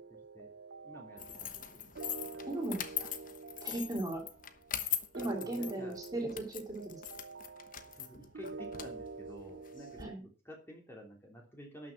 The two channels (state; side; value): normal; both; correlation 0.35